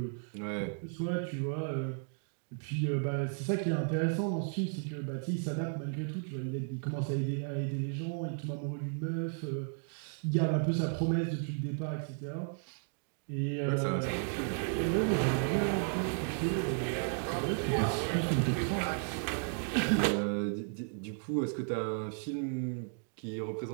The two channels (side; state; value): left; silent; 55 dB below the other